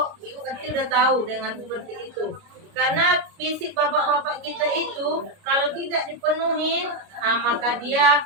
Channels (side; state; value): left; late; 29 ms